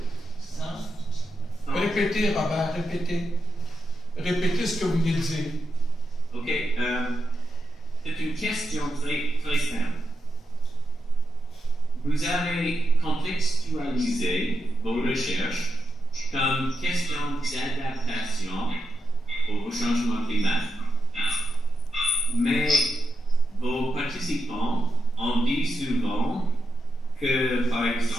Répétez, Robert, répétez. Répétez ce que vous venez de dire. OK. C'est une question très simple. Vous avez contextualisé vos recherches comme question d'adaptation au changement climatique. Mais vos participants ont dit souvent que, par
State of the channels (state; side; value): normal; both; correlation 0.86